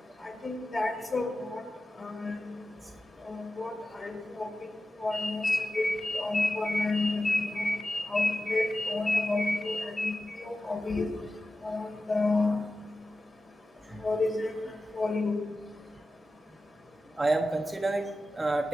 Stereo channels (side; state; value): both; normal; correlation 0.93